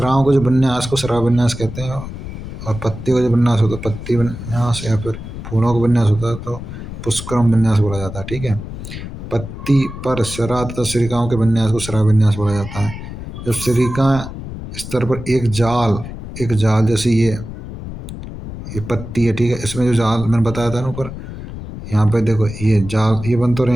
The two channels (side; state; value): left; noise; rumble, 10 dB below the sound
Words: को जो विन्यास को श्रावन्यास कहते हैं और पत्ती का जो विन्यास होता है पत्ती विन्यास, या फिर फूलों का विन्यास होता है तो पुष्करम विन्यास बोला जाता है। ठीक है। पत्ती पर सिरा तथा सिरिकाओं के विन्यास को श्रावन्यास बोला जाता है। जब सिरिका स्तर पर एक जाल जैसे ये पत्ती है। ठीक है। इसमें जो जाल मैंने बताया था ना ऊपर, यहाँ पे देखो ये जाल, ये बन तो रहे